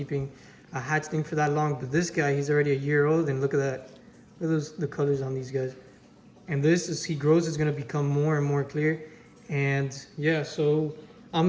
a hatchling for that long. But this guy, he's already a year old, and look at that. Look at the colors on these guys. And this, as he grows, is going to become more and more clear. And yeah, so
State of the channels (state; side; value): identical; both; correlation 1.00